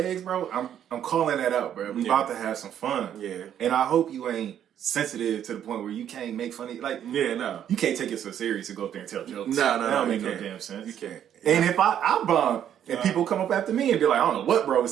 bro, I'm calling that out, bro. We about to have some fun. Yeah. And I hope you ain't sensitive to the point where you can't make funny, like, no, you can't take it so serious to go up there and tell jokes. No, that don't make no damn sense. You can't. And if I bomb and people come up after me and be like, I don't know what bro was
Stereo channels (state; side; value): quieter; left; 9.9 dB